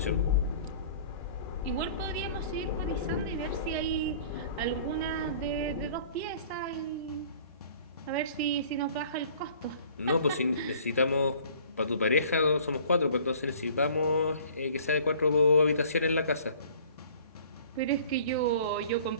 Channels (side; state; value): both; inverted; correlation -0.50